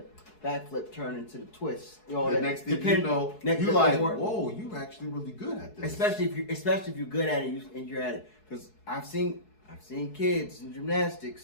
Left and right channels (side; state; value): right; late; 4.7 ms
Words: Back flip turns into the twist. You know, the next thing you know, you're like, whoa, you're actually really good at this. Especially if you're good at it and you're at it. Because I've seen I've seen kids in